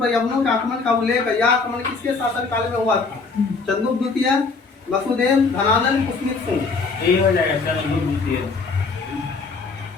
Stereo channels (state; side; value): quieter; right; 4.4 dB